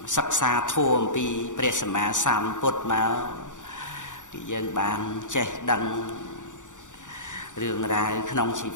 សិក្សាធម៌អំពីព្រះសម្មាសម្ពុទ្ធមកគឺយើងបានចេះដឹងរឿងរ៉ាវក្នុងជី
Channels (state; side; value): late; right; 0.86 ms